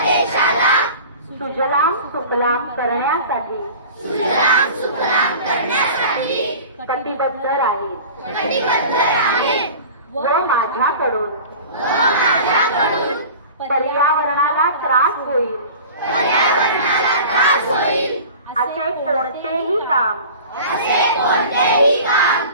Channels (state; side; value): inverted; both; correlation -0.39